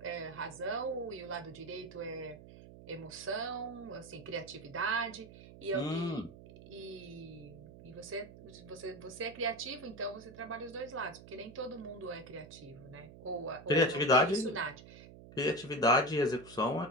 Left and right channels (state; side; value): noise; right; hum, 17 dB below the sound